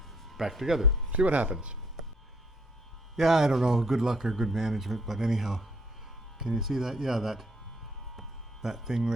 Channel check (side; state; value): both; normal; correlation 0.67